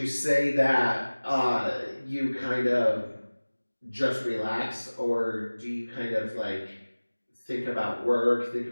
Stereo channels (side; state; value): both; inverted; correlation -1.00